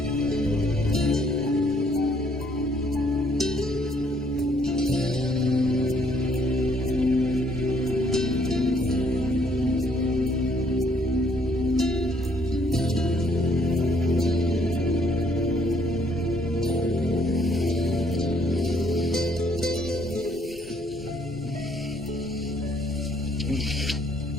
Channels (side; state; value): both; normal; correlation 0.66